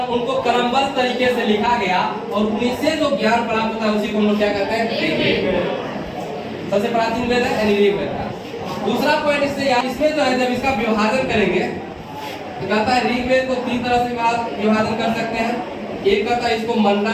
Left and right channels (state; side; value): identical; both; correlation 1.00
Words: उनको क्रमबद्ध तरीके से लिखा गया और उनसे जो ज्ञान प्राप्त होता है उसी को हम लोग क्या कहते हैं? सबसे प्राचीन वेद है यानी ऋग्वेद। दूसरा पॉइंट इसमें जो है जब इसका विभाजन करेंगे तो कहता है ऋग्वेद को तीन तरह से विभाजन कर सकते हैं। एक कहता है इसको